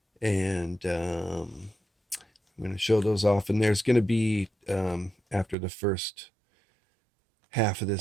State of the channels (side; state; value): left; drops out; at 5.6 s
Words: And I'm going to show those off. And there's going to be, after the first half of